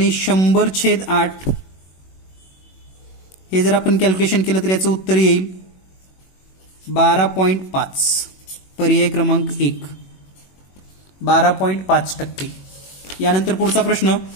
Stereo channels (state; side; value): late; right; 21 ms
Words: 100/8. हे जर आपण कॅल्क्युलेशन केलं तर याचं उत्तर येईल 12.5. पर्याय क्रमांक 1 12.5%. यानंतर पुढचा प्रश्न